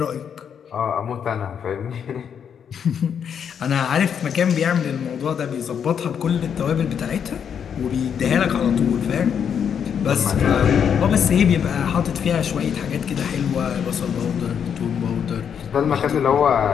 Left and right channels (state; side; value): quieter; right; 7.8 dB